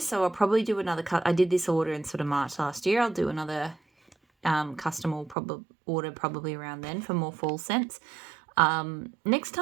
I'll probably do another cut. I did this order in sort of March last year. I'll do another custom order probably around then for more fall scents. Next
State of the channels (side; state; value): left; drops out; at 5.4 s